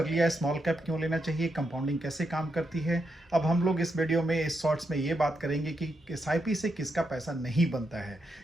लिया है स्मॉल कैप क्यों लेना चाहिए, कंपाउंडिंग कैसे काम करती है। अब हम लोग इस वीडियो में, इस शॉर्ट्स में ये बात करेंगे कि एसआईपी से किसका पैसा नहीं बनता है,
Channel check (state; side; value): normal; both; correlation 0.83